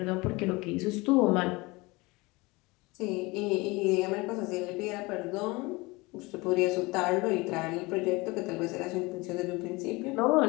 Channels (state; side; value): quieter; right; 23.8 dB